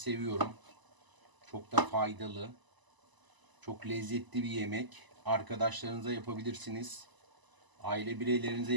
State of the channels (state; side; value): late; left; 1.0 ms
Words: Çok da faydalı. Çok lezzetli bir yemek. Arkadaşlarınıza yapabilirsiniz. Aile bireylerinize